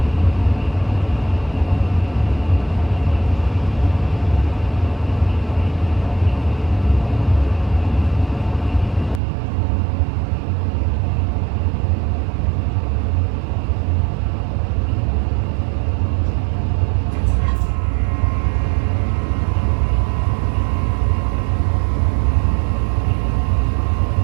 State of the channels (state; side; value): drops out; left; at 9.2 s